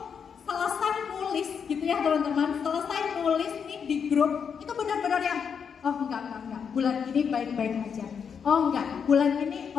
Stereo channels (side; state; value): right; quieter; 6.8 dB